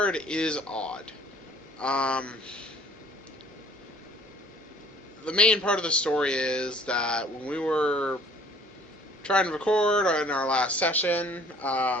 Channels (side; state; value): both; normal; correlation 0.54